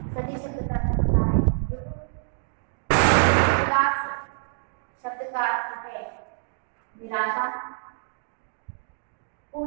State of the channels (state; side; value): silent; left; digital silence